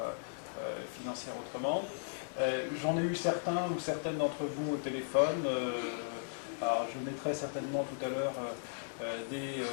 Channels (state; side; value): silent; right; digital silence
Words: Financière Autrement. J'en ai eu certains ou certaines d'entre vous au téléphone. Alors, je mettrai certainement tout à l'heure des